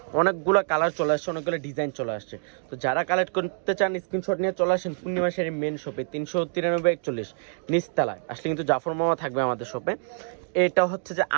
অনেকগুলো কালার চলে আসছে, অনেকগুলো ডিজাইন চলে আসছে। তো যারা কালেক্ট করতে চান স্ক্রিনশট নিয়ে চলে আসেন পূর্ণিমা শাড়ির মেন শপে, 393 নিচতলায় আসলে কিন্তু জাফর মামা থাকবে আমাদের শপে। এটা হচ্ছে যে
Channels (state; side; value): silent; left; digital silence